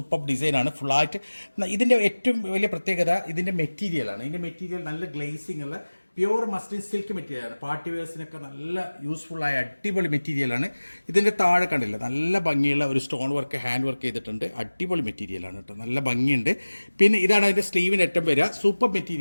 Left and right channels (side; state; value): both; inverted; correlation -1.00